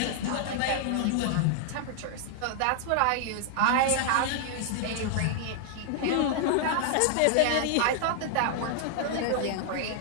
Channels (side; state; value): both; different; correlation -0.01